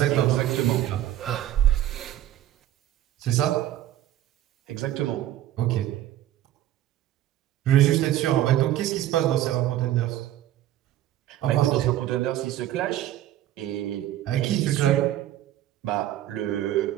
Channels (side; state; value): left; quieter; 13.0 dB